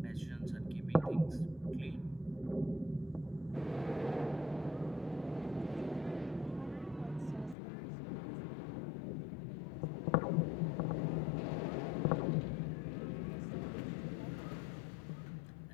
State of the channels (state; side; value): drops out; right; at 7.6 s